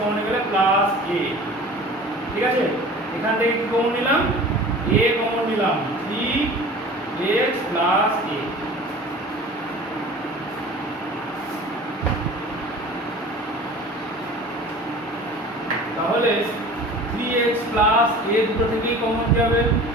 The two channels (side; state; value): both; normal; correlation 0.41